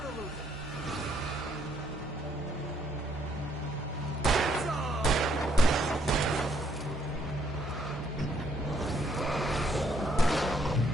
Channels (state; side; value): normal; both; correlation 0.70